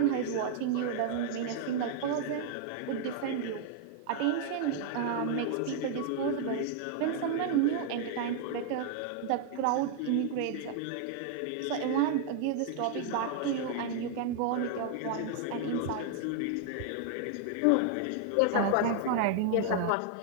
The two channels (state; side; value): different; both; correlation 0.00